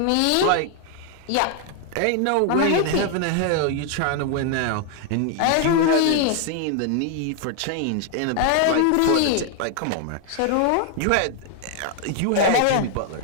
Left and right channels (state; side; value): different; both; correlation 0.00